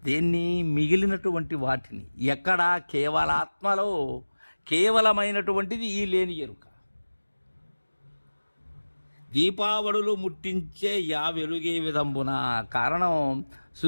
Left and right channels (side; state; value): both; inverted; correlation -1.00